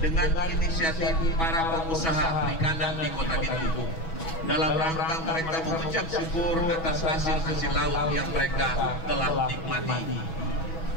inisiatif para pengusaha perikanan di Kota Bitung dalam rangka mereka mengucap syukur atas hasil-hasil laut yang mereka telah nikmati.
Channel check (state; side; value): late; right; 6.2 ms